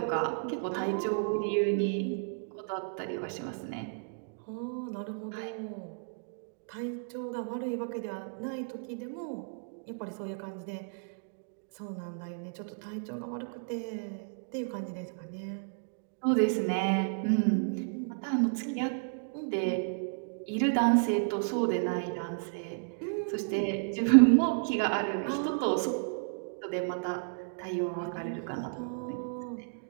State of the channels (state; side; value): silent; left; digital silence